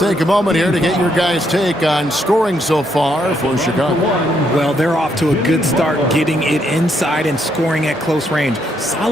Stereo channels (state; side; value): normal; both; correlation 0.75